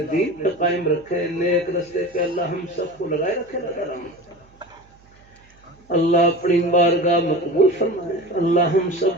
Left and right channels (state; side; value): noise; right; hum, 29 dB below the sound